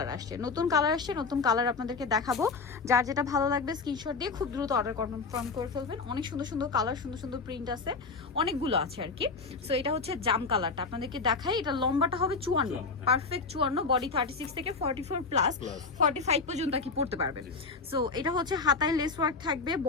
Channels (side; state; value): right; quieter; 4.4 dB